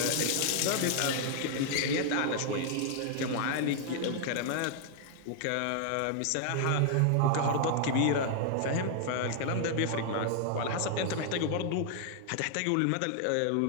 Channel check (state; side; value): different; both; correlation 0.00